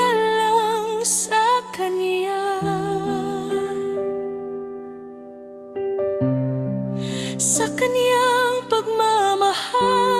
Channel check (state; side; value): identical; both; correlation 1.00